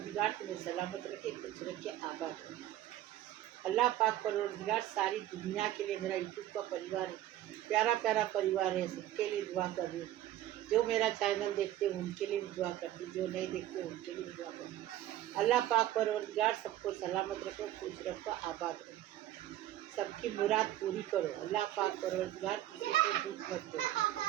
तुम्हें सलामत रखे, खुश रखे, आबाद रखे। अल्लाह पाक परवरदिगार सारी दुनिया के लिए, मेरा यूट्यूब का परिवार है, प्यारा प्यारा परिवार है, सबके लिए दुआ कर रही हूँ। जो मेरा चैनल देखते हैं उनके लिए भी दुआ करती हूँ, जो नहीं देखते उनके लिए भी दुआ करती हूँ। अल्लाह पाक परवरदिगार सबको सलामत रखो, खुश रखो, आबाद रखो, सबकी मुराद पूरी करो। अल्लाह पाक परवरदिगार किसी को दुख मत दो,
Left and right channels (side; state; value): left; quieter; 13.5 dB